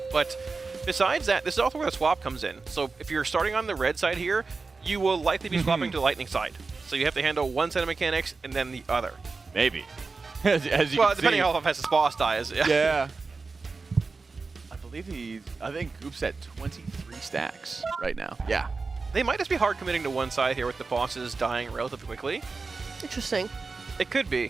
but besides that, this is also where the swap comes in. So if you're starting on the red side here, you will likely be swapping to the lightning side. So you have to handle one set of mechanics and then the other. Maybe. as you well, can depending see. on how fast his boss dies. Yeah. I think Goop's at 23 stacks right now. Yeah. They might just be hard committing to one side here with the bosses dying relatively quickly. Interesting. It could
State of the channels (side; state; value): left; quieter; 4.2 dB